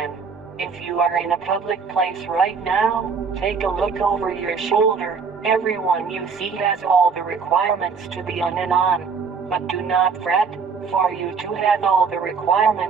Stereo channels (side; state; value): left; quieter; 5.5 dB